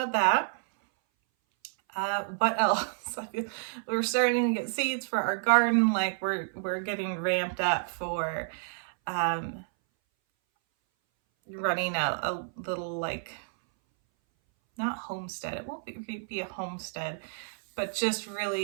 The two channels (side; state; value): left; silent; 58 dB below the other